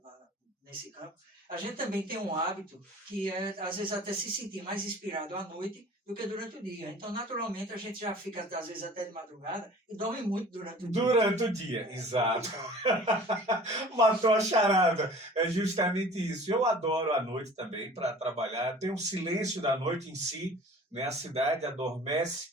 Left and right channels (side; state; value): both; normal; correlation 0.45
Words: nesse campo, a gente também tem um hábito que é, às vezes, até se sentir mais inspirado à noite do que durante o dia. Então, naturalmente, a gente já fica, às vezes, até de madrugada e dorme muito durante o dia. Durante o dia, exato. Matou a charada. É justamente isso. Eu adoro a noite também para trabalhar. Tem um silêncio da noite em si, né? A cidade adormece.